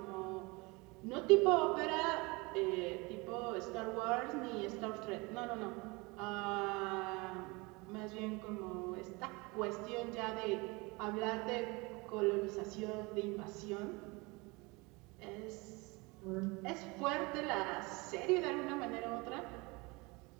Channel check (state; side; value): quieter; left; 25.9 dB